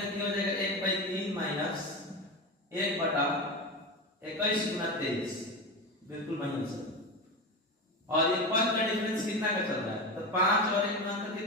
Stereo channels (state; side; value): normal; both; correlation 0.21